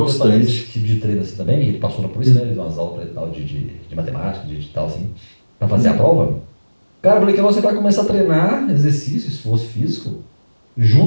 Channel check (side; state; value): both; inverted; correlation -1.00